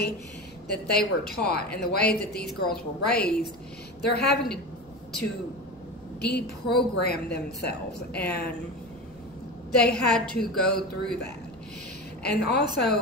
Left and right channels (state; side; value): noise; right; rumble, 24 dB below the sound